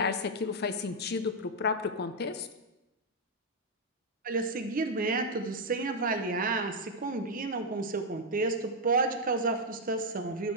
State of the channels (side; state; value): both; normal; correlation 0.00